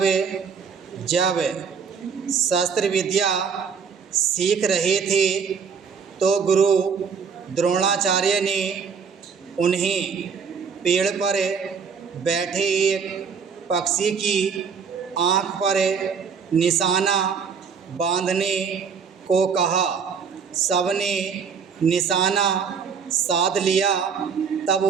जब शस्त्र विद्या सीख रहे थे तो गुरु द्रोणाचार्य ने उन्हें पेड़ पर बैठे एक पक्षी की आँख पर निशाना बांधने को कहा। सबने निशाना साध लिया। तब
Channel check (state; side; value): quieter; left; 6.2 dB